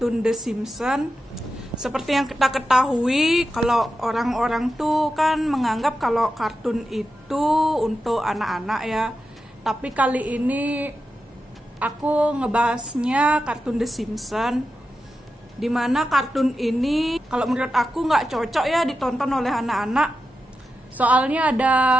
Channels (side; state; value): both; normal; correlation 0.90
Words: The Simpsons. Seperti yang kita ketahui, kalau orang-orang tuh kan menganggap kalau kartun itu untuk anak-anak ya. Tapi kali ini aku ngebahasnya kartun The Simpsons, dimana kartun ini kalau menurut aku nggak cocok ya ditonton oleh anak-anak. Soalnya ada